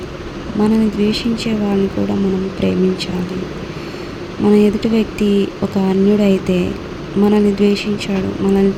మనల్ని ద్వేషించే వాళ్ళని కూడా మనము ప్రేమించాలి. మన ఎదుటి వ్యక్తి ఒక అన్యుడైతే మనల్ని ద్వేషించాడు, మనల్ని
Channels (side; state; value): both; identical; correlation 1.00